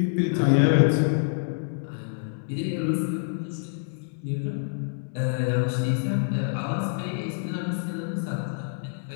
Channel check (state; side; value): silent; right; digital silence